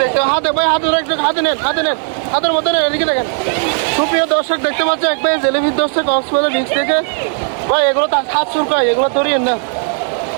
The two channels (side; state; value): left; silent; 56 dB below the other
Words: হাতে ভাই, হাতে হাতে নেন, হাতে নেন, হাতের মধ্যে নেন, এদিকে দেখেন। সুপ্রিয় দর্শক দেখতে পাচ্ছেন এক ভাই জেলেবির ধরছে কক্সবাজার বিচ থেকে। ভাই এগুলো তার হাত শুরকায়, এগুলো ধরিয়েন না,